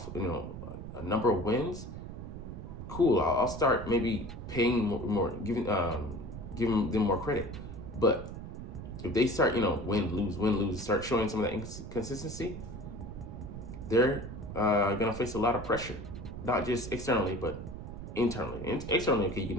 a number of wins. Cool. I'll start maybe paying more, giving them more credit. But if they start, win, lose, start showing some of that inconsistency, they're going to face a lot of pressure. Not just externally, but internally. And externally, okay, you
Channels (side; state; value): right; noise; rumble, 9 dB below the sound